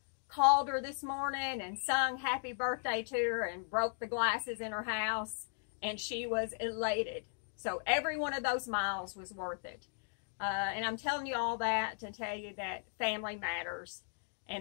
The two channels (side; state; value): right; silent; digital silence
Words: called her this morning and sung happy birthday to her and broke the glasses in her house, and she was elated. So every one of those miles was worth it. And I'm telling you all that to tell you that family matters,